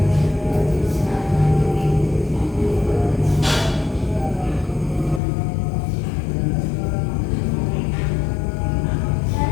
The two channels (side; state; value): right; drops out; at 5.2 s